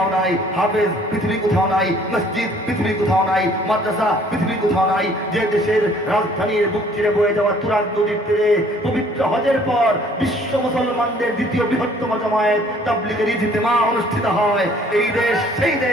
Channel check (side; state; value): both; normal; correlation 0.57